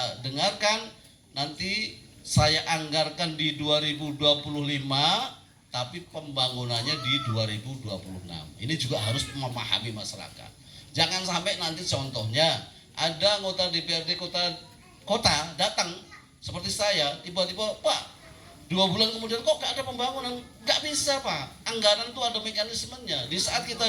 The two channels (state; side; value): identical; both; correlation 1.00